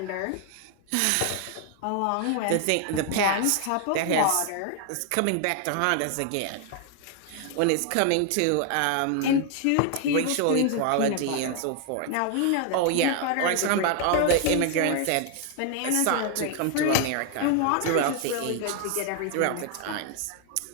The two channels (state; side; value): different; both; correlation 0.00